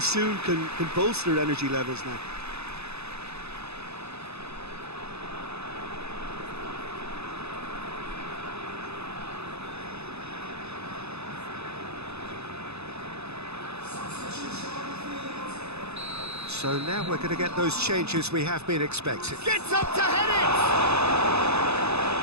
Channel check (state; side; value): late; left; 0.79 ms